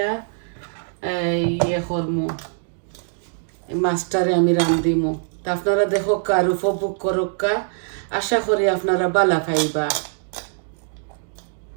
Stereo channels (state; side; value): silent; left; digital silence